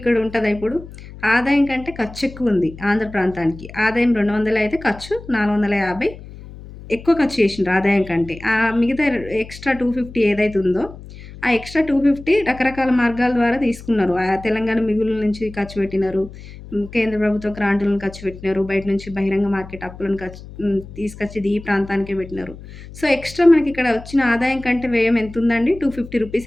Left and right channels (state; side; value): noise; left; hum, 16 dB below the sound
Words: ఉంటదా ఇప్పుడు? ఆదాయం కంటే ఖర్చు ఎక్కువుంది ఆంధ్ర ప్రాంతానికి. ఆదాయం 200 అయితే ఖర్చు 450 ఎక్కువ ఖర్చు చేసిండ్రు ఆదాయం కంటే. మిగతా ఎక్స్‌ట్రా 250 ఏదైతే ఉందో, ఆ ఎక్స్‌ట్రా 250 రకరకాల మార్గాల ద్వారా తీసుకున్నారు. తెలంగాణ మిగులు నుంచి ఖర్చు పెట్టినారు. కేంద్ర ప్రభుత్వ గ్రాంటులను ఖర్చు పెట్టినారు. బయట నుంచి బహిరంగ మార్కెట్ అప్పులను తీసుకొచ్చి ఈ ప్రాంతానికే పెట్టినారు. సో, ఎక్స్‌ట్రా మనకిక్కడ వచ్చిన ఆదాయం కంటే వ్యయం ఎంతుందండి? రూ. 250